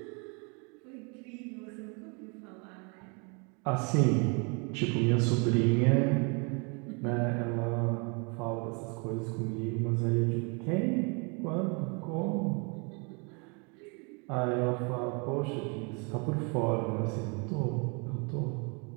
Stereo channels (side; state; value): left; quieter; 33.7 dB